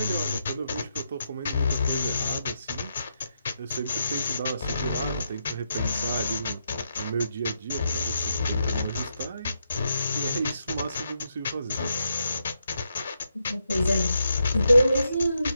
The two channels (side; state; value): both; inverted; correlation -0.82